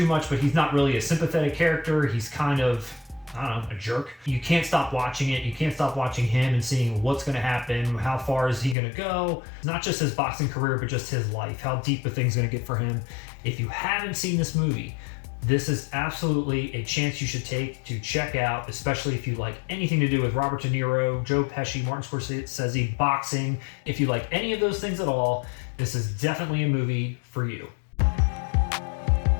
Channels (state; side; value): drops out; right; at 8.8 s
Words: much, but he's not really a sympathetic character. He's kind of, I don't know, a jerk. You can't stop watching it. You can't stop watching him and seeing what's going to happen. How far is he going to go? Not just his boxing career, but just his life. How deep the thing's going to get for him. If you haven't seen this movie, this is absolutely a chance you should take to check out, especially if you like anything to do with Robert De Niro, Joe Pesci, Martin Scorsese, boxing. If you like any of those things at all, this is definitely a movie for you.